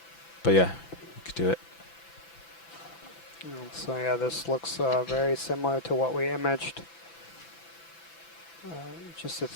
But yeah, we could do it. So yeah, this looks very similar to what we imaged just a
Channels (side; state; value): right; late; 6.0 ms